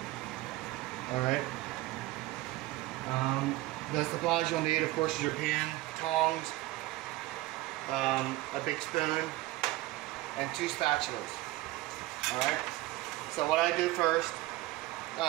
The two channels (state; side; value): quieter; left; 18.0 dB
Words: Alright. The supplies you'll need, of course, is your pan, tongs, a big spoon, and 2 spatulas. Alright. So what I do first,